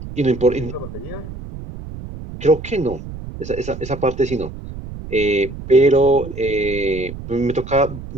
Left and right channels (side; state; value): right; noise; rumble, 11 dB below the sound